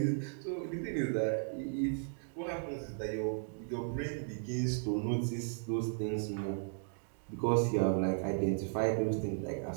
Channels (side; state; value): left; silent; digital silence